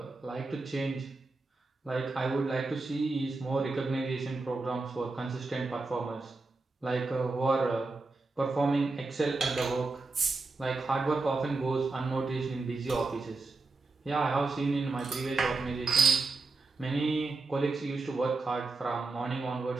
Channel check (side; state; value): left; quieter; 3.6 dB